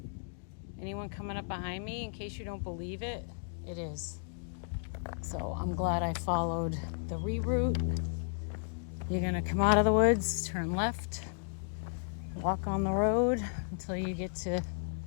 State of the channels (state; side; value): silent; right; digital silence